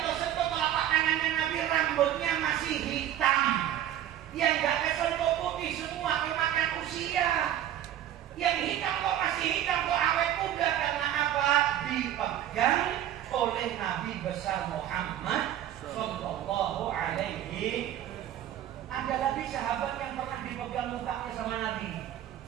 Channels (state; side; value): quieter; left; 11.6 dB